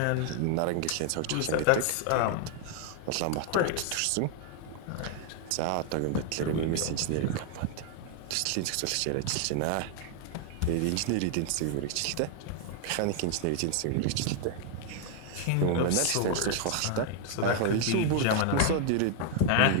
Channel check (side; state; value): both; different; correlation 0.00